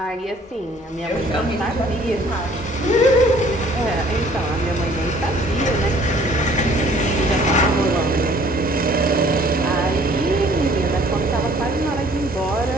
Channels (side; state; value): both; normal; correlation 0.56